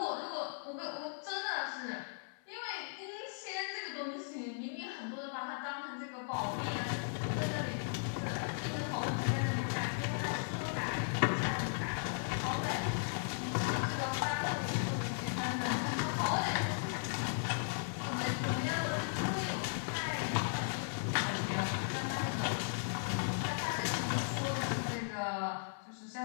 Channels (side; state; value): right; silent; 53 dB below the other